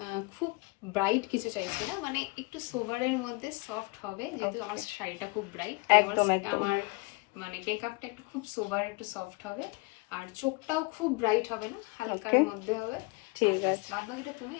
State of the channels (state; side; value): quieter; right; 26.7 dB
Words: খুব ব্রাইট কিছু চাইছি না, মানে একটু সোভারের মধ্যে সফট হবে, যেহেতু আমার শাড়িটা খুব ব্রাইট। একদম একদম। আমার মানে মেকআপটা একটু খুব সোভার, একটু সফট হবে, আর চোখটাও খুব ব্রাইট হবে না, হালকার মধ্যে হবে। ঠিক আছে, বাদ বাকিটা তুমি।